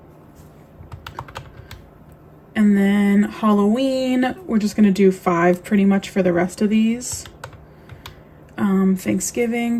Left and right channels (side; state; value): both; identical; correlation 1.00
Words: And then Halloween, we're just gonna do 5 pretty much for the rest of these. Thanksgiving,